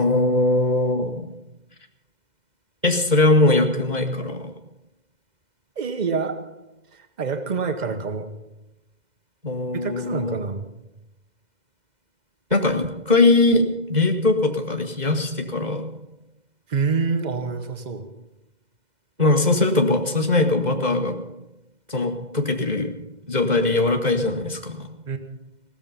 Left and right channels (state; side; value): late; left; 2.0 ms